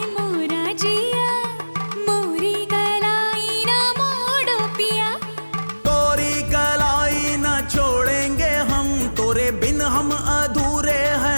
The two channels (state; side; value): inverted; both; correlation -1.00